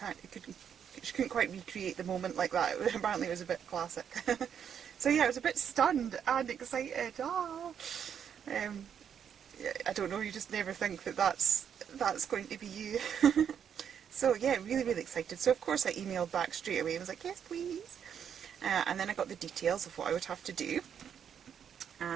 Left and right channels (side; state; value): left; quieter; 8.2 dB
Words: she couldn't quite recreate the moment like that. Apparently it was a bit classic. So yeah, I was a bit stunned and excited. I don't know, you just never think that that's going to be you. So yeah, really excited. So of course I emailed back straight away and was like, yes please. And then I got the details of what I would have to do.